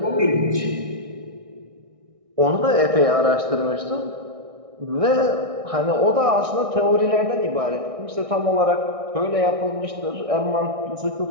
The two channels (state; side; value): late; left; 1.6 ms